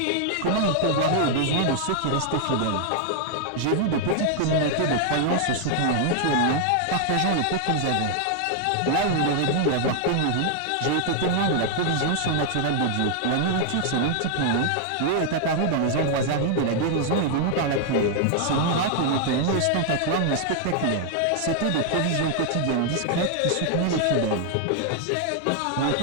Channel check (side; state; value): both; different; correlation 0.00